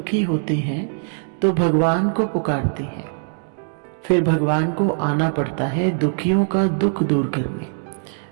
होते हैं तो भगवान को पुकारते हैं, फिर भगवान को आना पड़ता है दुखियों का दुख दूर करने।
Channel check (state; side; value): silent; left; digital silence